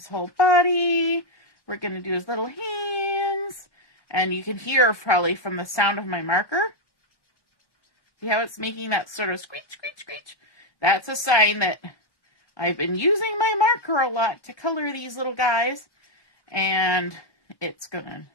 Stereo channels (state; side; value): late; right; 1.2 ms